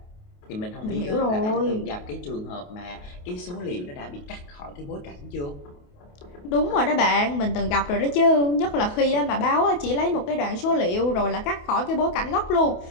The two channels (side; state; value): right; late; 28 ms